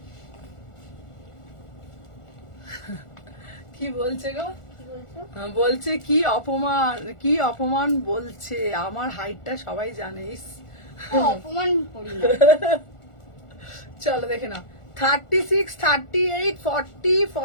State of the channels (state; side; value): late; right; 1.4 ms